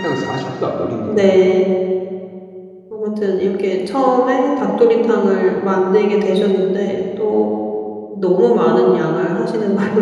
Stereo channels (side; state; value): both; identical; correlation 1.00